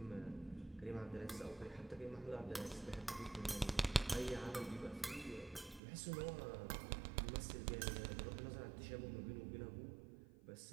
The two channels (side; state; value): left; drops out; at 5.8 s